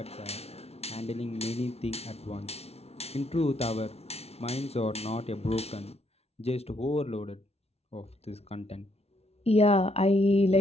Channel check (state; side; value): late; right; 0.30 ms